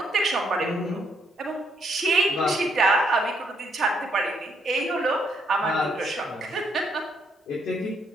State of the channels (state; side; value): normal; both; correlation 0.73